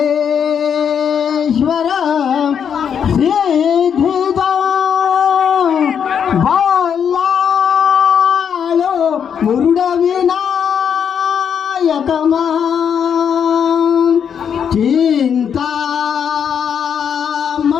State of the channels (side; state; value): right; quieter; 7.7 dB